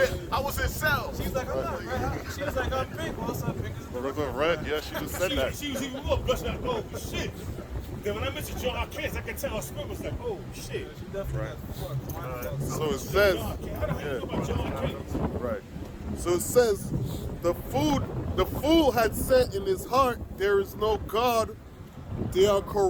I was in cells. She's like, I'm not red. She was like, I'm pink. Also, pink is the Regular red, yeah, she just said that. She was even more blushing like, oh shit. Then when I mentioned John Arcanus, I could tell her spirit was like, oh shit. She definitely got So it says, John Arcanus. How the hell you know about John Arcanus? right. So it says, the fool had said in his heart, there is no God. They are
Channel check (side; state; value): both; identical; correlation 1.00